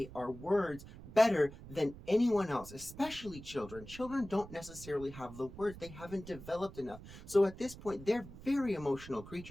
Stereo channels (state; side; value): noise; right; rumble, 15 dB below the sound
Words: our words better than anyone else, especially children. Children don't necessarily have the words, they haven't developed enough. So at this point, they're very emotional